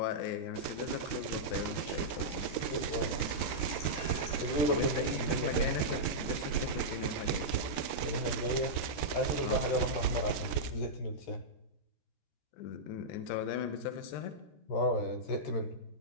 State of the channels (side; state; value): right; late; 14 ms